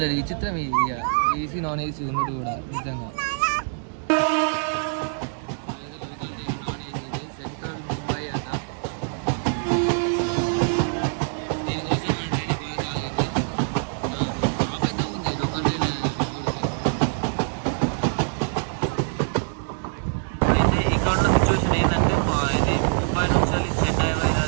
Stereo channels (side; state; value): left; silent; 62 dB below the other